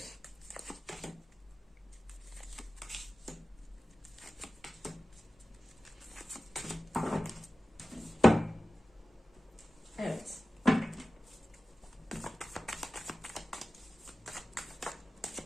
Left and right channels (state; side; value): normal; both; correlation 0.95